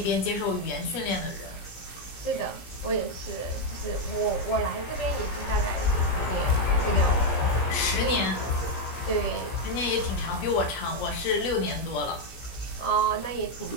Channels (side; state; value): right; late; 17 ms